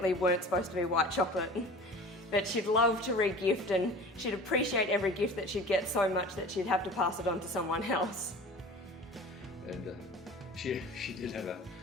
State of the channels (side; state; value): both; normal; correlation 0.40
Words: weren't supposed to be white chocolate. But she'd love to re-gift, and she'd appreciate every gift that she'd get so much that she'd have to pass it on to someone else. And she did have a